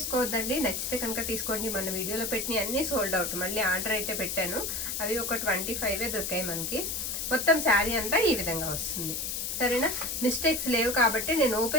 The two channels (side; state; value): left; noise; hiss, 2 dB below the sound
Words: నచ్చితే కనుక తీసుకోండి. మన వీడియోలో పెట్టిన అన్నీ సోల్డ్ అవుట్. మళ్ళీ ఆర్డర్ అయితే పెట్టాను, అవి ఒక 25 దొరికాయి మనకి. మొత్తం శారీ అంతా ఈ విధంగా వస్తుంది. సరేనా, మిస్టేక్స్ లేవు కాబట్టి నేను